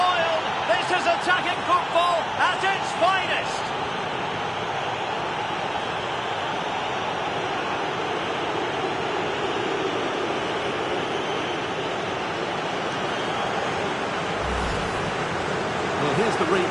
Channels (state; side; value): identical; both; correlation 1.00